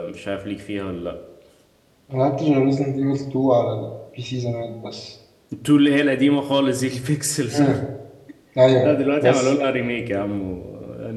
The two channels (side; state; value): both; identical; correlation 1.00